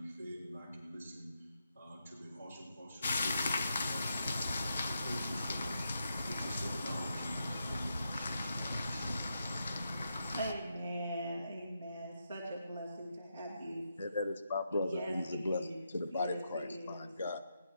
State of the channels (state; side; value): inverted; both; correlation -0.84